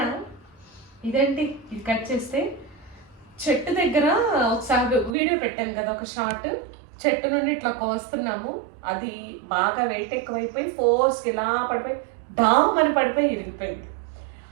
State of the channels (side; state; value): left; drops out; at 5.2 s